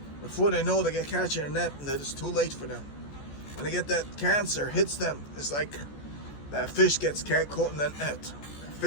Before they know they get captured in a net, and that it's too late for them. When they get that cancer hits them, it's like that fish gets caught in that net. That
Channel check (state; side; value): late; right; 14 ms